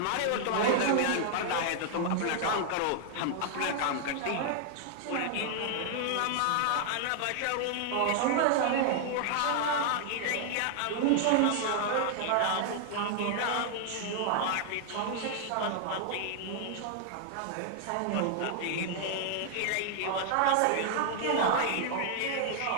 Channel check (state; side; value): different; both; correlation -0.01